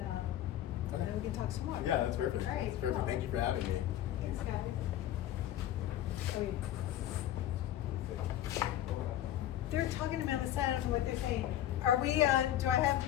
we can talk some more. Yeah, that's perfect. All right, That's perfect. cool. Thank you for having me. Thanks, guys. They're talking about the side. I don't know what they're saying. Are we? Do I have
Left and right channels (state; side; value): quieter; right; 12.4 dB